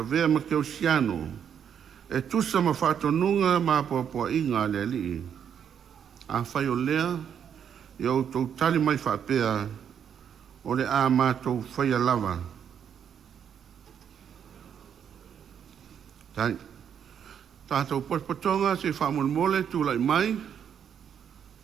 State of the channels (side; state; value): left; quieter; 8.3 dB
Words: vea ma keosiano. E tusa ma whatonunga ma poa inga le li. A whai o lea i au tau tali mai whapea o le a mātou whai lava. Tai. Tātou paspatonga se whamon mole tūlai mai.